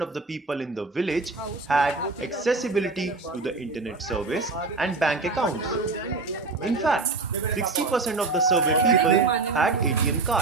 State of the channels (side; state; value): left; quieter; 3.6 dB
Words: of the people in the village had accessibility to the internet service and bank accounts. In fact, 60% of the survey people had ATM